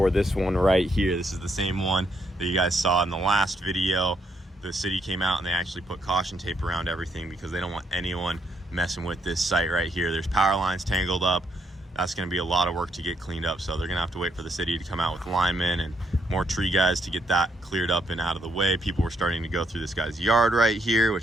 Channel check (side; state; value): both; normal; correlation 0.75